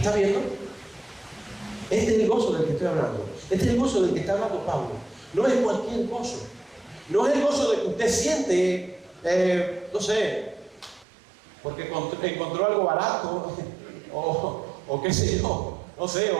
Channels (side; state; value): left; drops out; at 11.1 s